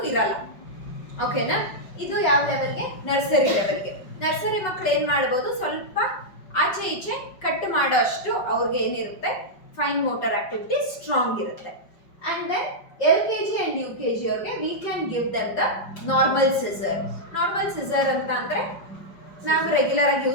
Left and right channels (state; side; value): late; right; 5.3 ms